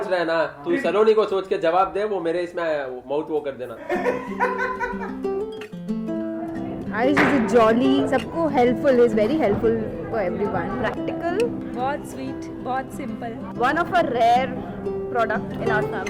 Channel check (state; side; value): identical; both; correlation 1.00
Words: रहा है ना, तू सलोनी को सोच के जवाब दे, वो मेरे इसमें माउथ वो कर देना। आयुष इज जॉली, सबको helpful, is very helpful for everyone, practical, बहुत स्वीट, बहुत simple, one of a rare product in our